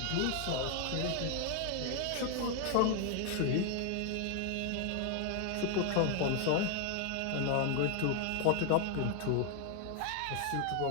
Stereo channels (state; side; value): different; both; correlation 0.00